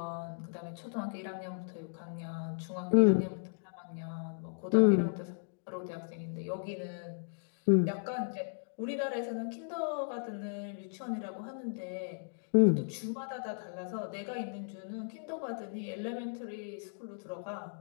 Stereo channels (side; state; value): right; silent; digital silence